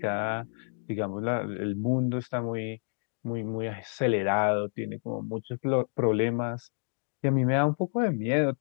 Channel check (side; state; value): right; silent; digital silence